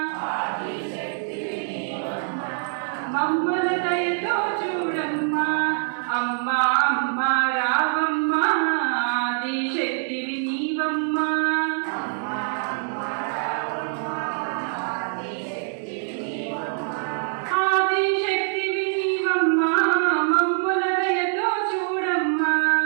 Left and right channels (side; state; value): left; silent; digital silence